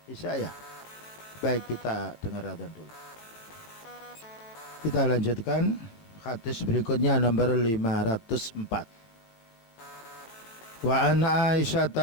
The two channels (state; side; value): late; right; 18 ms